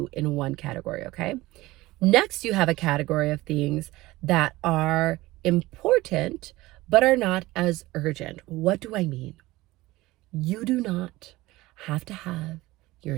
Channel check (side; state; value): left; quieter; 19.0 dB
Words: in one category, okay? Next, you have a category of things that are important, but are not as urgent. What do I mean? You do not have to have your